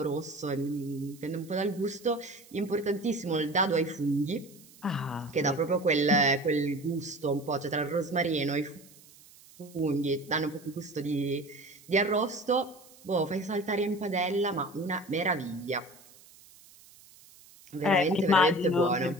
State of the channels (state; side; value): noise; right; hiss, 24 dB below the sound